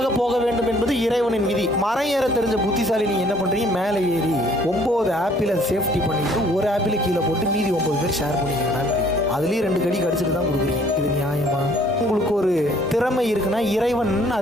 போக வேண்டும் என்பது இறைவனின் விதி. மரம் ஏற தெரிஞ்ச புத்திசாலி நீங்க என்ன பண்றீங்க, மேலே ஏறி 9 ஆப்பிளை சேஃப்டி பண்ணிட்டு ஒரு ஆப்பிளை கீழே போட்டு மீதி 9 பேர் ஷேர் பண்ணிக்கிறீங்க. அதுலேயும் 2 கடி கடிச்சிட்டு தான் கொடுக்குறீங்க. இது நியாயமா? உங்களுக்கு ஒரு திறமை இருக்குன்னா இறைவன்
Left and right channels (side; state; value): both; normal; correlation 0.59